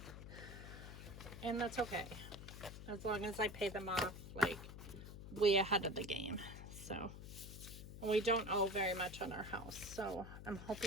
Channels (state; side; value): noise; left; hum, 11 dB below the sound